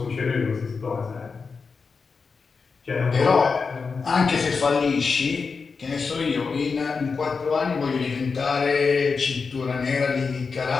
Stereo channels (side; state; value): right; quieter; 5.0 dB